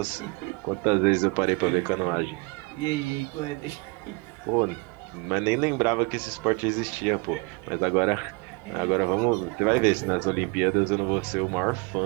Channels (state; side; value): quieter; left; 29.0 dB